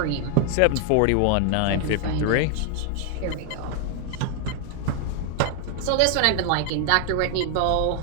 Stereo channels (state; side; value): different; both; correlation 0.00